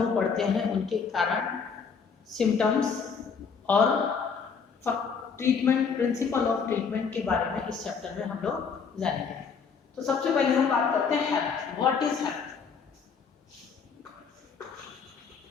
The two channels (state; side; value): quieter; right; 5.9 dB